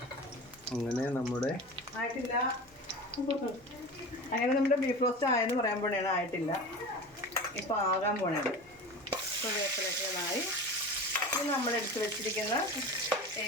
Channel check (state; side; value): normal; both; correlation 0.32